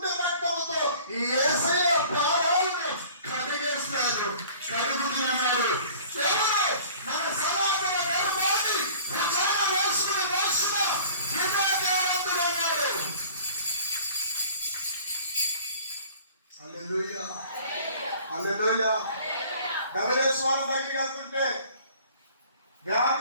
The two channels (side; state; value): both; inverted; correlation -0.48